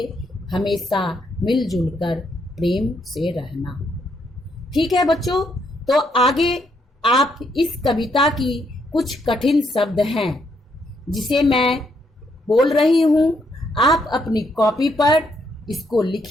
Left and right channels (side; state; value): both; normal; correlation 0.75